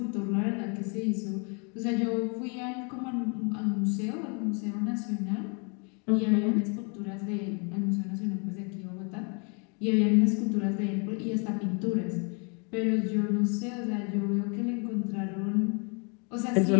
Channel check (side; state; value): right; quieter; 35.7 dB